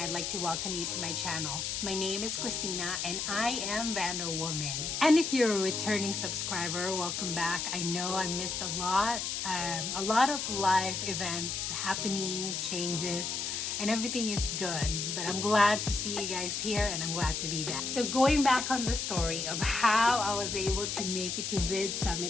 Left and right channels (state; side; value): noise; left; hiss, 2 dB below the sound